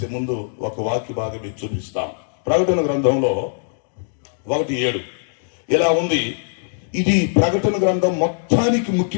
ముందు ఒక వాక్య భాగం మీకు చూపిస్తాం. ప్రకటన గ్రంథంలో 1:7 ఇలా ఉంది. ఇది ప్రకటన గ్రంథం మొత్తానికి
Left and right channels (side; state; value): right; silent; digital silence